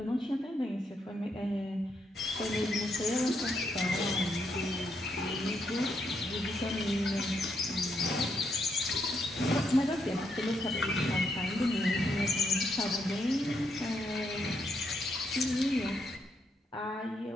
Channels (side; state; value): both; normal; correlation 0.77